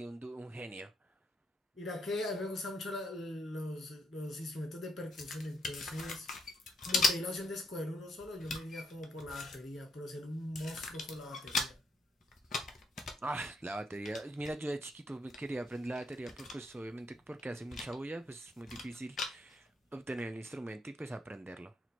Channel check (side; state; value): both; normal; correlation 0.75